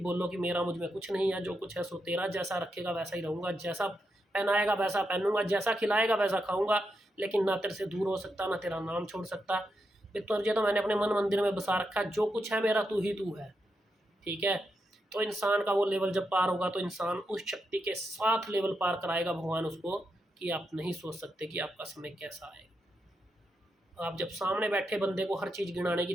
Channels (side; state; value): both; normal; correlation 0.84